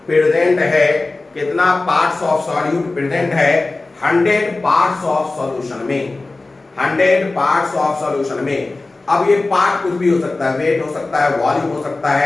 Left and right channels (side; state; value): right; quieter; 3.3 dB